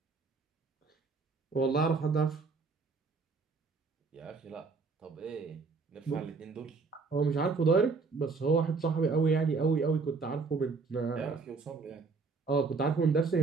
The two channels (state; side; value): quieter; left; 4.5 dB